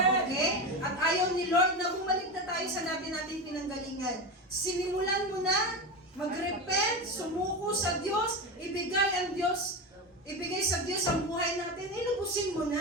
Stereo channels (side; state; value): both; normal; correlation 0.20